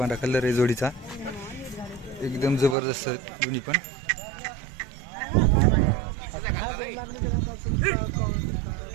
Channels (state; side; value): drops out; left; at 2.8 s